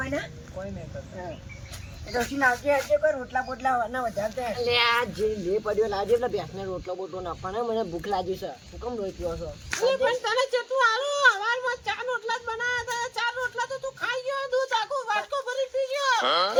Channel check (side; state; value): both; identical; correlation 1.00